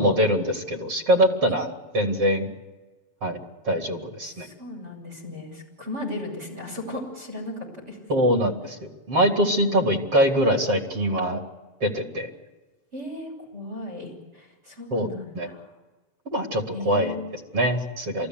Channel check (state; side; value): late; left; 7.4 ms